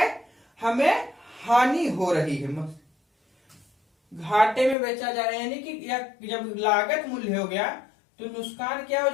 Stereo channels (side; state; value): right; drops out; at 4.8 s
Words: हमें हानि हो रही है, घाटे में बेचा जा रहा है। यानी कि जब लागत मूल्य हो गया तो नुकसान क्या हो